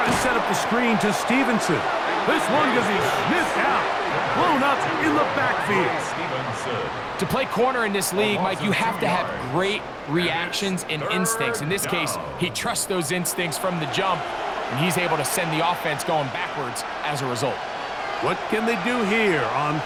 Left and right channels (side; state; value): both; identical; correlation 1.00